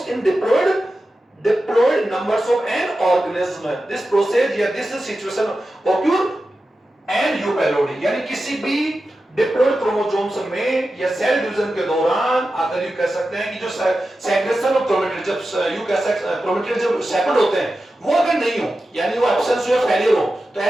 in diploid numbers of an organism. This process या this situation occur and eupelody, यानी किसी भी डिप्लॉइड क्रोमोसोम्स में या सेल डिवीजन के दौरान अगर यू कह सकते हैं कि जो सेग्रेशन ऑफ क्रोमेटिड, जब यू कह सकते हैं क्रोमेटिड जब सेपरेट होते हैं, वो अगर नहीं हो, यानी वो एब्सेंस हो या फेलियर हो, तो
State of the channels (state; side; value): normal; both; correlation 0.92